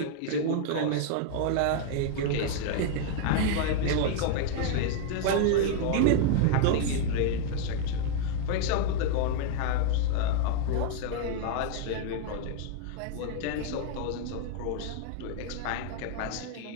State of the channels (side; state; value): both; different; correlation 0.00